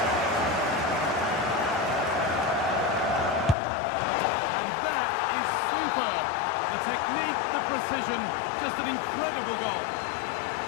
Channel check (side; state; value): right; drops out; at 3.6 s